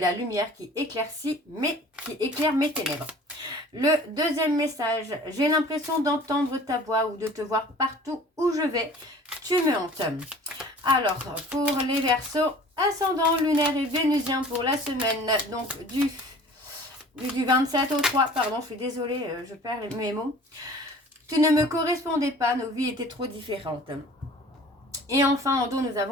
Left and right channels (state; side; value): normal; both; correlation 0.47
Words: lumière qui éclaire mes ténèbres. » Le deuxième message, « J'ai l'impression d'entendre ta voix ou de te voir partout où je vais. Tu me hantes. » Alors, pour les Verseaux, ascendant lunaire et vénusien pour la semaine donc du 27 au 3. Pardon, je suis désolée, je perds mes mots. Tu ne me correspondais pas, nos vies étaient trop différentes. Et enfin, en dos, nous